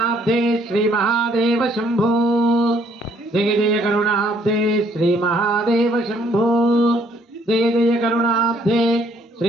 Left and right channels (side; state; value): both; normal; correlation 0.65